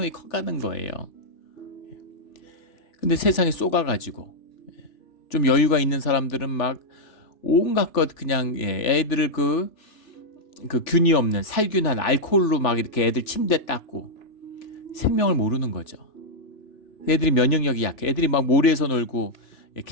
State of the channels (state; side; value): late; right; 3.4 ms